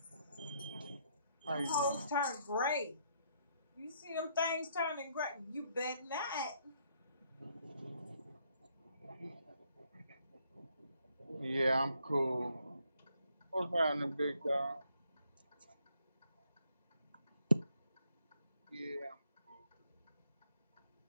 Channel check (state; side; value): inverted; both; correlation -0.71